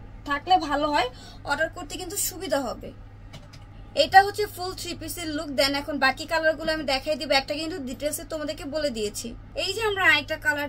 থাকলে ভালো হয়, অর্ডার করতে কিন্তু সুবিধা হবে। এটা হচ্ছে ফুল 3 পিসের লুক। দেন এখন বাকি কালারগুলো আমি দেখাই দিব, একটা কিন্তু ডিটেলসে তোমাদেরকে বলে দিয়েছি। এই যে আমরা আরেকটা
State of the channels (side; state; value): both; identical; correlation 1.00